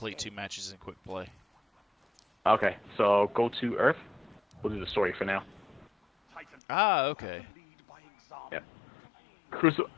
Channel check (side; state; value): right; drops out; at 6.6 s